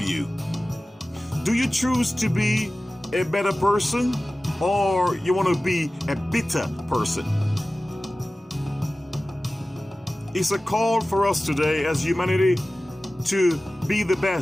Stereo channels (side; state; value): both; normal; correlation 0.96